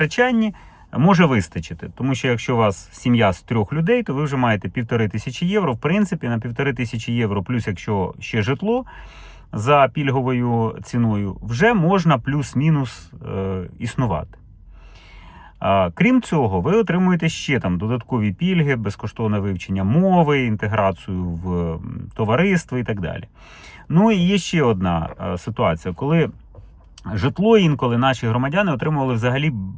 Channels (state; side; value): identical; both; correlation 1.00